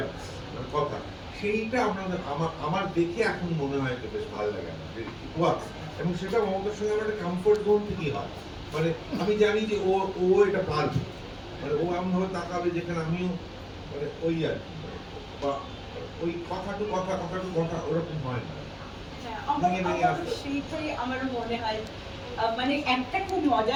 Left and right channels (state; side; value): identical; both; correlation 1.00